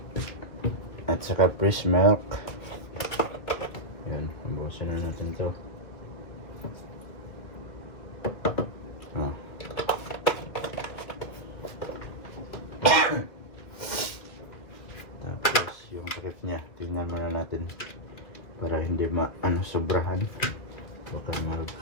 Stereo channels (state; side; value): late; right; 2.7 ms